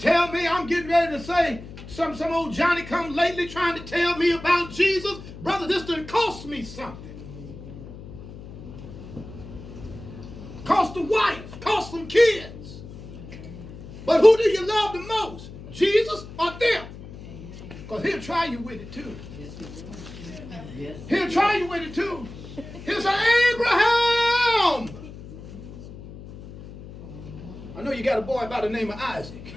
me I'm getting ready to say some old Johnny come lately trying to tell me about Jesus? Brother, this done cost me something. Cost the wife, cost some kids. But who do you love the most? Jesus or them? Because he'll try you with it too. He'll try you with it too. He'll say, Abraham. I know you got a boy by the name of Isaac.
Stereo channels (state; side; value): noise; left; hum, 14 dB below the sound